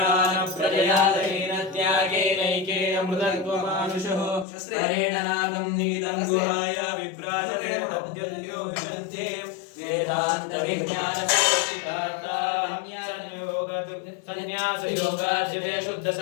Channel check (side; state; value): right; drops out; at 4.5 s